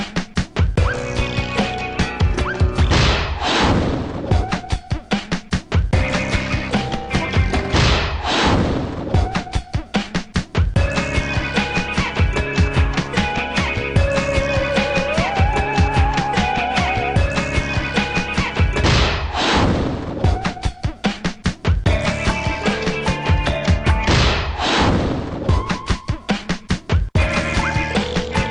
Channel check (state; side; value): identical; both; correlation 1.00